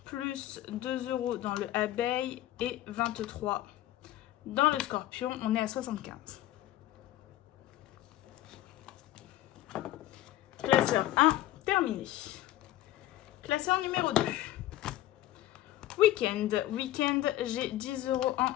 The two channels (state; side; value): quieter; right; 14.5 dB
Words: plus 2 € dans le abeille et 23 dans le scorpion. On est à 75. Classeur 1, terminé. Classeur numéro 2. Week-end, j'ai 10 €